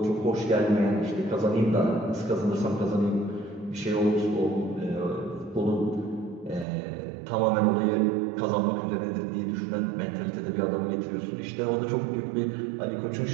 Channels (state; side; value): drops out; left; at 6.7 s